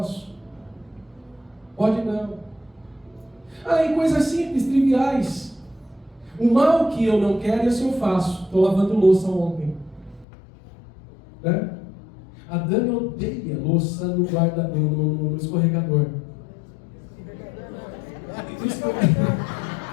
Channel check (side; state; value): right; drops out; at 10.2 s